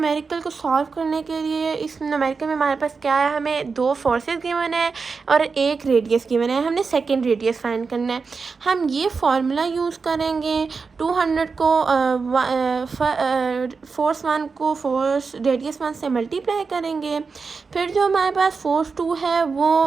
को सॉल्व करने के लिए इस न्यूमेरिकल में हमारे पास क्या है, हमें दो फोर्सेस गिवन है और एक रेडियस गिवन है। हमने सेकंड रेडियस फाइंड करना है। हम ये फार्मूला यूज़ करेंगे। 200 को फोर्स 1 को फोर्स रेडियस 1 से मल्टीप्लाई करेंगे, फिर जो हमारे पास फोर्स 2 है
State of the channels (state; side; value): quieter; left; 4.8 dB